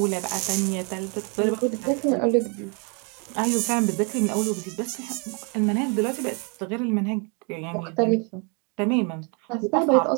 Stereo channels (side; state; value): left; quieter; 35.5 dB